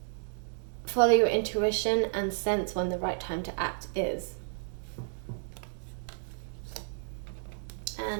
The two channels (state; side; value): silent; left; digital silence